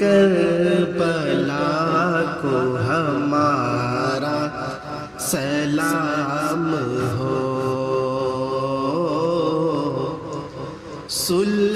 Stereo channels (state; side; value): identical; both; correlation 1.00